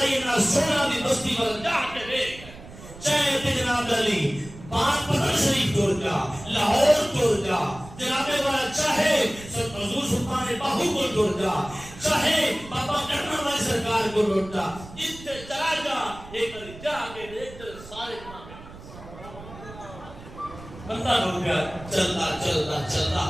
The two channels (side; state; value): right; noise; rumble, 17 dB below the sound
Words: نہ سونا دی بستی پر جا کے دیکھ چاہے تے جناب علی بات پتر شریف ٹور جا لاہور ٹور جا جناب والا چاہے حضور سلطان باہو کو ٹور جا چاہے بابا کرنا والی سرکار کو ٹور جا جتنے چلا جا ایک جا کے دیکھ سارے نام بندہ ہو گیا چلتا چلتا چلتا